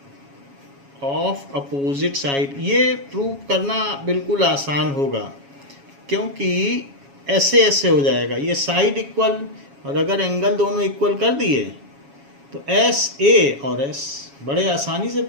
of opposite side. ये prove करना बिल्कुल आसान होगा क्योंकि ऐसे ऐसे हो जाएगा, ये साइड इक्वल, और अगर एंगल दोनों इक्वल कर दिए तो एस ए और एस बड़े आसानी से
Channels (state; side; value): late; left; 7.2 ms